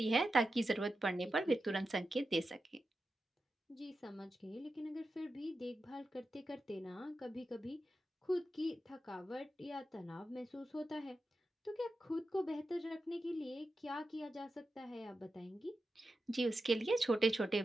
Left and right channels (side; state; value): both; normal; correlation 0.90